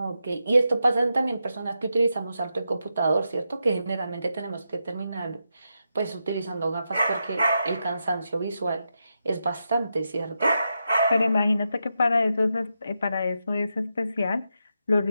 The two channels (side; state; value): both; inverted; correlation -0.86